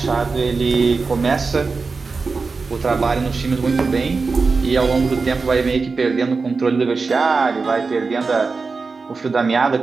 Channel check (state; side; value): quieter; left; 4.4 dB